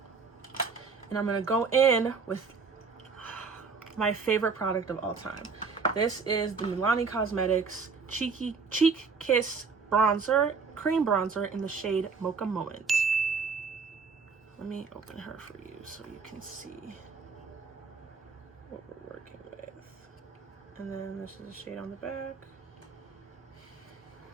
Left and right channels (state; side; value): quieter; left; 5.0 dB